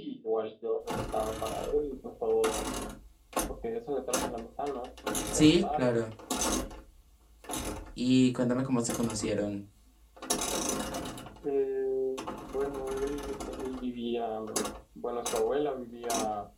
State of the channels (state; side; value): identical; both; correlation 1.00